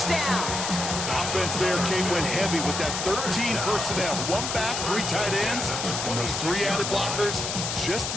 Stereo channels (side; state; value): left; noise; hiss, 3 dB below the sound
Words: down. Offense there, Kate, went heavy with that 13 personnel. 1 back, 3 tight ends, and those 3 added blockers. Just